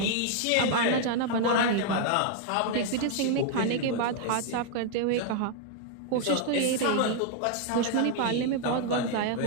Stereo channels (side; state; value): both; different; correlation 0.00